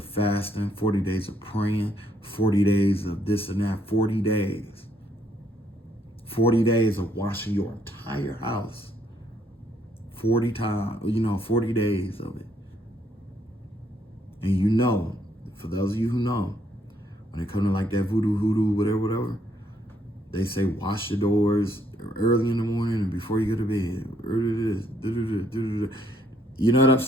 fasting, 40 days of praying, 40 days of this and that, 40 days. 40 days of washing your entire house. 40 times, you know, 40 days of it. And you know, for those of you who know, when it comes to like that voodoo, whatever, they say wash your doors early in the morning and before you go to bed. You know what I'm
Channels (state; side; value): normal; both; correlation 0.70